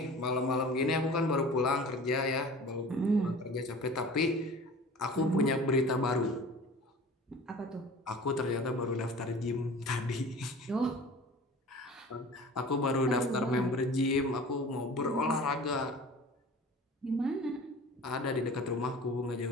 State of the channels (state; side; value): normal; both; correlation 0.41